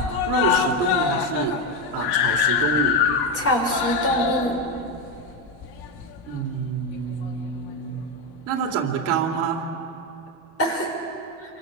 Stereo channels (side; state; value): both; normal; correlation 0.11